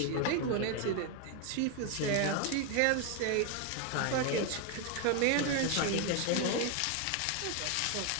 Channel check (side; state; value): both; different; correlation 0.01